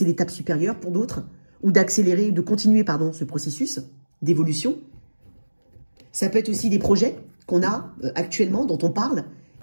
l'étape supérieure pour d'autres ou d'accélérer, de continuer, pardon, ce processus d'évolution. Ça peut être aussi des projets qu'on a actuellement, dont on parle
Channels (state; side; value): inverted; both; correlation -1.00